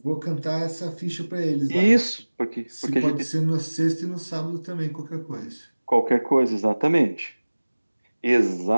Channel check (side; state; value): both; inverted; correlation -1.00